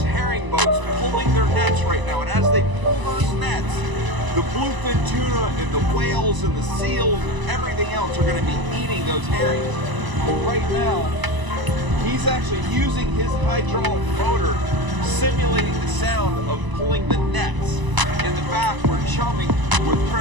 herring boats pulling their nets right now, and as they pull those nets, the bluefin tuna and the whales and the seals and everything else are going to be eating those herrings. But right now, he's actually using his hydraulic motor, simulating the sound of pulling the nets. In the back, we're chumming with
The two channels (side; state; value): left; late; 1.0 ms